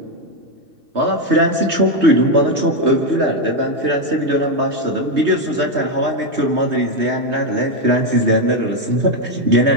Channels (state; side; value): late; left; 3.2 ms